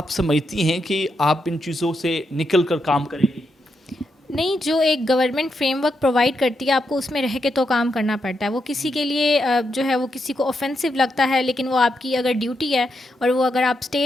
سمجھتی ہیں کہ آپ ان چیزوں سے نکل کر کام کریں گی؟ نہیں, جو ایک گورنمنٹ فریم ورک پرووائڈ کرتی ہے آپ کو اس میں رہ کے تو کام کرنا پڑتا ہے. وہ کسی کے لیے جو ہے وہ کسی کو اوفینسو لگتا ہے, لیکن وہ آپ کی اگر ڈیوٹی ہے اور وہ اگر آپ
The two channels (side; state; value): both; normal; correlation 0.83